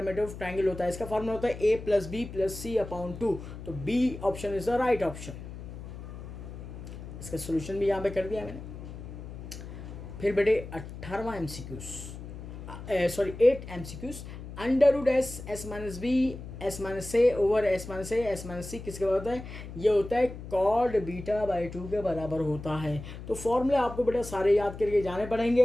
ऑफ ट्राइंगल होता है, इसका फॉर्मूला होता है a plus b plus c upon two. तो B option is the right option. इसका सोल्यूशन भी यहाँ पे कर दिया मैंने। फिर बेटे 18वां MCQs, sorry 8 MCQs. Under root s s minus b s minus a over s minus a s minus c किसके बराबर होता है? ये होता है कॉड बीटा बाई टू के बराबर होता है। तो फॉर्मूले आपको बेटा सारे याद करके जाने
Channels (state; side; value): noise; left; hum, 11 dB below the sound